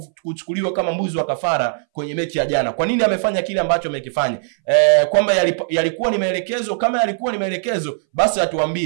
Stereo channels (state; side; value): silent; left; 63 dB below the other